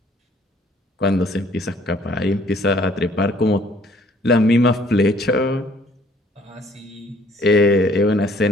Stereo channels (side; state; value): both; normal; correlation 0.61